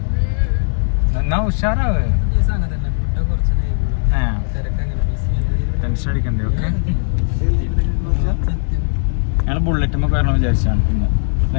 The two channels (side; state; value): right; silent; digital silence